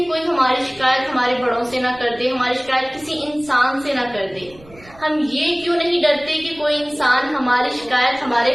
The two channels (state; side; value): noise; right; rumble, 23 dB below the sound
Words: کوئی ہماری شکایت ہمارے بڑوں سے نہ کر دے، ہماری شکایت کسی انسان سے نہ کر دے۔ ہم یہ کیوں نہیں ڈرتے کہ کوئی انسان ہماری شکایت